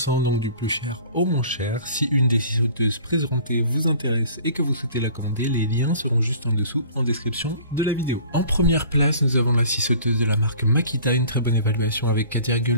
donc du plus cher au moins cher. Si une des scies sauteuses présentées vous intéresse et que vous souhaitez la commander, les liens seront juste en dessous en description de la vidéo. En première place, nous avons la scie sauteuse de la marque Makita, une très bonne évaluation avec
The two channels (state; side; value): inverted; both; correlation -0.47